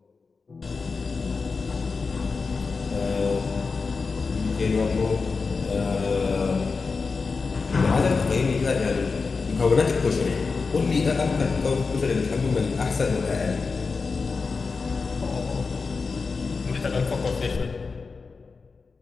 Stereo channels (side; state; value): right; quieter; 4.6 dB